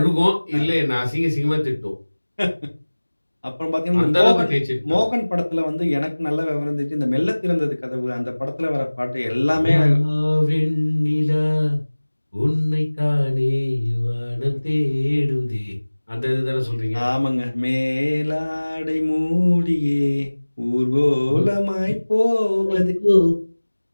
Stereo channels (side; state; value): both; inverted; correlation -1.00